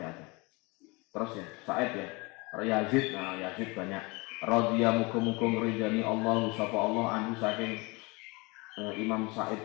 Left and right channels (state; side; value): quieter; right; 26.5 dB